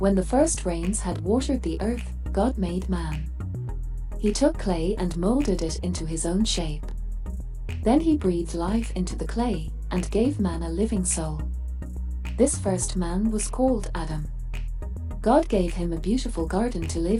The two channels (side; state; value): both; identical; correlation 1.00